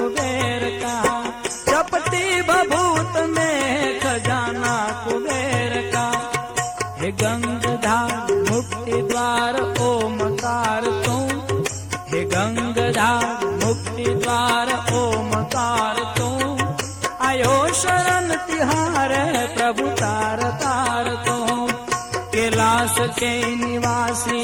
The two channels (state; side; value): noise; left; hum, 27 dB below the sound